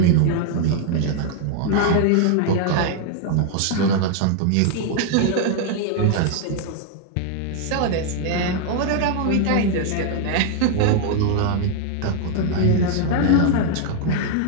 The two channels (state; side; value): different; both; correlation 0.00